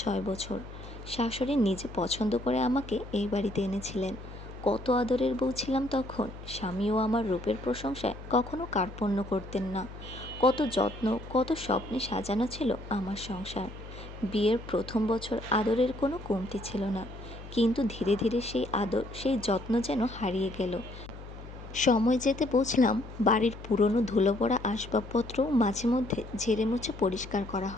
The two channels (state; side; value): noise; left; hum, 14 dB below the sound